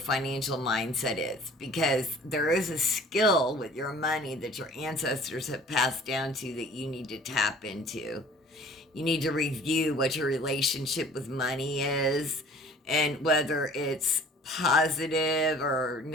mindset is, because there is a skill with your money that your ancestors have passed down to that you need to tap into. You need to review what your relationship with money is, and whether it's positive or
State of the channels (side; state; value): both; normal; correlation 0.49